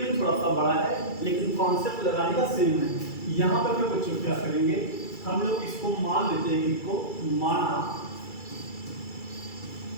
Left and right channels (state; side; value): late; right; 2.3 ms